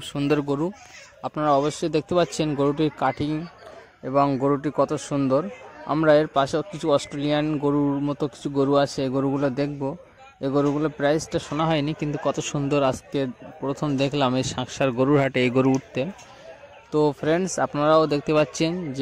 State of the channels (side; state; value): both; identical; correlation 1.00